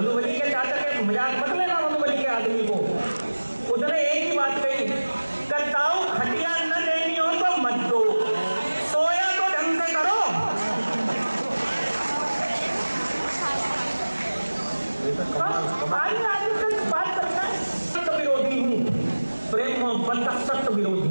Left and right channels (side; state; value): both; inverted; correlation -1.00